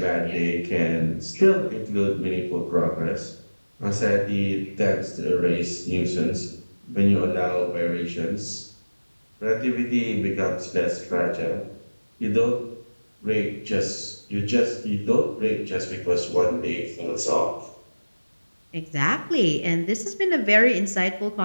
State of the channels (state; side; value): inverted; both; correlation -1.00